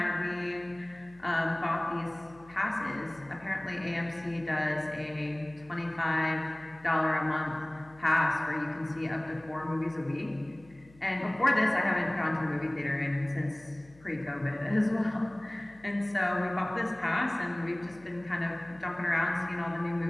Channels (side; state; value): left; noise; hum, 25 dB below the sound